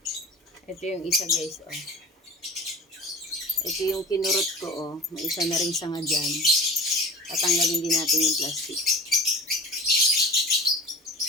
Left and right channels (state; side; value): normal; both; correlation 0.38